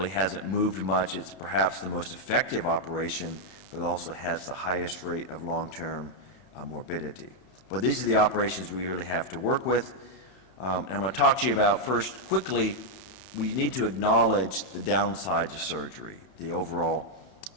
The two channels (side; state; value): right; late; 31 ms